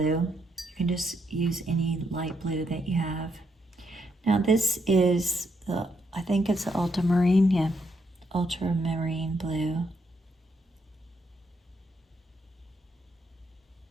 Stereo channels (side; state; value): both; normal; correlation 0.77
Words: You can just use any light blue that you have. Now this is I think it's the ultramarine, yeah, ultramarine blue.